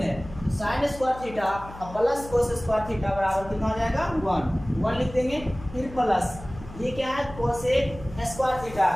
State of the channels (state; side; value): noise; left; hum, 15 dB below the sound